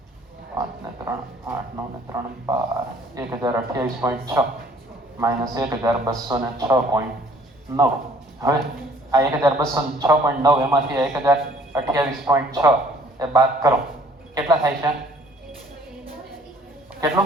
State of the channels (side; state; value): both; normal; correlation 0.57